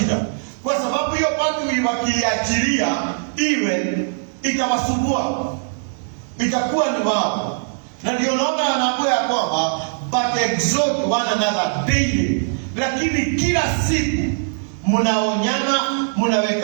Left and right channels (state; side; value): silent; left; 65 dB below the other